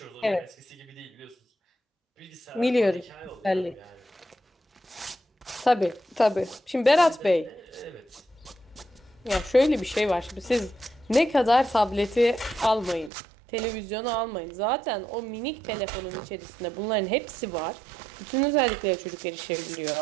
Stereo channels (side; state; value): left; drops out; at 13.1 s